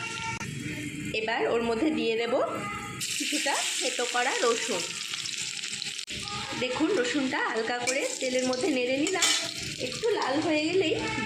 এবার ওর মধ্যে দিয়ে দেব কিছুটা থেতো করা রসুন। দেখুন, রসুনটা হালকা করে তেলের মধ্যে নেড়ে নিলাম। একটু লাল হয়ে গেলেই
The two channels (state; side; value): identical; both; correlation 1.00